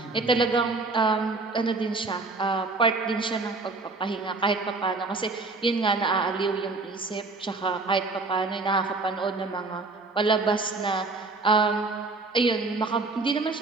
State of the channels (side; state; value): left; quieter; 3.6 dB